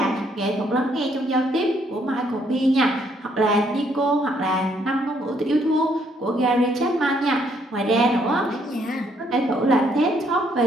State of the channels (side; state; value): both; normal; correlation 0.69